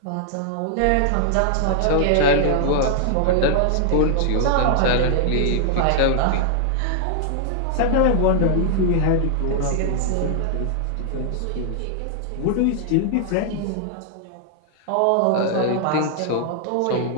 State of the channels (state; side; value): different; both; correlation -0.01